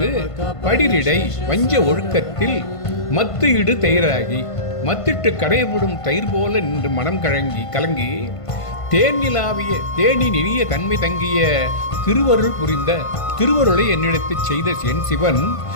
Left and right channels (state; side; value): late; right; 1.5 ms